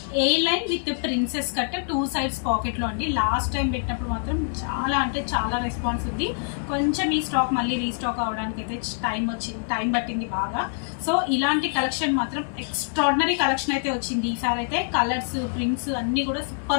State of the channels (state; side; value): silent; right; 62 dB below the other